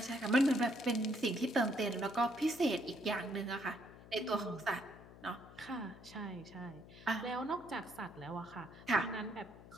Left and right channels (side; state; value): left; noise; hum, 18 dB below the sound